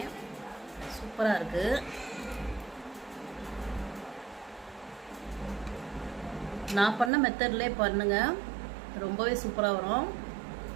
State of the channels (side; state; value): left; drops out; at 7.1 s